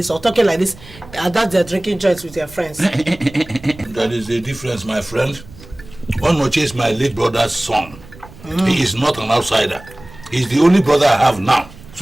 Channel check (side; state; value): right; noise; rumble, 20 dB below the sound